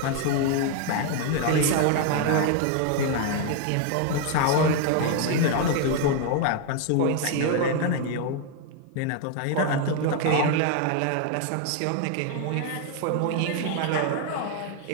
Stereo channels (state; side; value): different; both; correlation 0.00